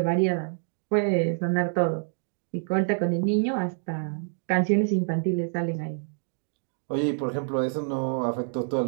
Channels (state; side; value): silent; left; 60 dB below the other